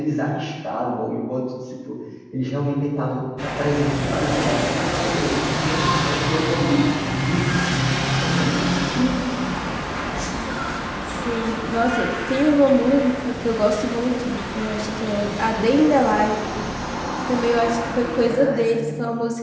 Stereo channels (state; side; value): identical; both; correlation 1.00